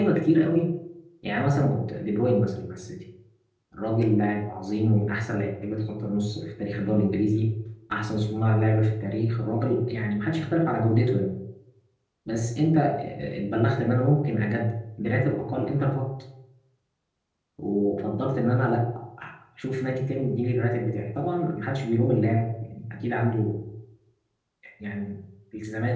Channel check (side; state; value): both; identical; correlation 1.00